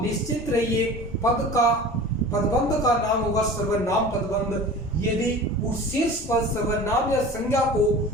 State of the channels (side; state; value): both; normal; correlation 0.38